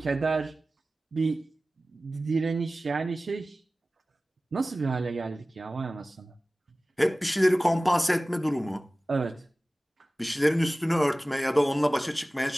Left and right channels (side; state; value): both; normal; correlation 0.97